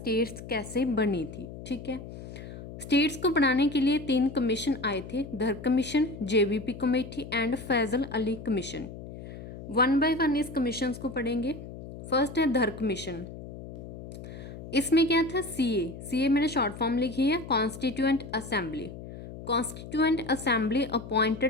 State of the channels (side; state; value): left; noise; hum, 12 dB below the sound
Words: कैसे बनी थी। ठीक है। स्टेट्स को बनाने के लिए 3 कमीशन आए थे, Dhar commission, JBP committee and Fazal Ali commission. One by one इस कमीशंस को पढ़ेंगे। फर्स्ट है धर कमीशन। इसमें क्या था, सीए मैंने शॉर्ट फॉर्म लिखी है, constituent assembly. Constituent assembly